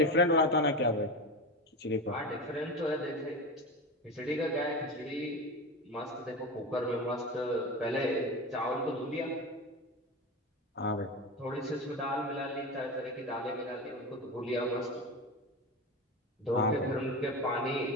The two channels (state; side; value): normal; both; correlation 0.23